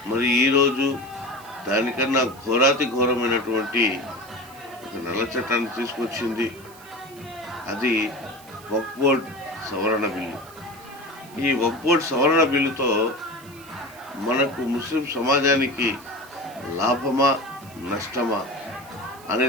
మరి ఈరోజు దానికన్నా ఘోరాతి ఘోరమైనటువంటి ఒక నల్ల చట్టాన్ని తీసుకొచ్చింది. అది వక్ఫ్ బోర్డ్ సవరణ బిల్లు. ఈ వక్ఫ్ బోర్డ్ సవరణ బిల్లుతో మనకు ముస్లిం సమాజానికి లాభమా నష్టమా అనే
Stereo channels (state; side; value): noise; right; hiss, 22 dB below the sound